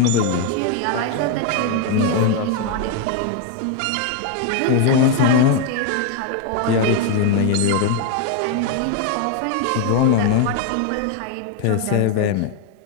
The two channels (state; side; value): different; both; correlation 0.01